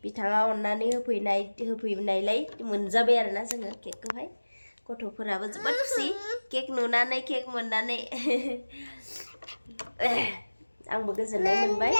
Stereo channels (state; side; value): inverted; both; correlation -1.00